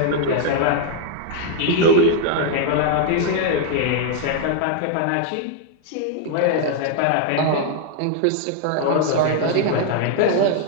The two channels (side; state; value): both; different; correlation 0.00